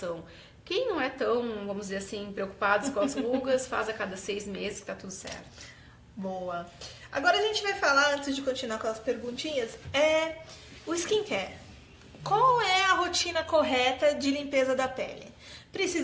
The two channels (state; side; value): identical; both; correlation 1.00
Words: Quem não é tão, vamos dizer assim, preocupado com as rugas, faz a cada 6 meses que tá tudo certo. Boa. Agora a gente vai falar, antes de continuar com as perguntinhas, o skincare. qual é a rotina correta de limpeza da pele?